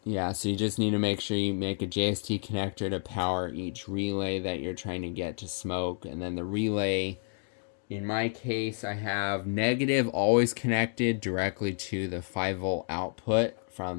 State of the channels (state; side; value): silent; right; digital silence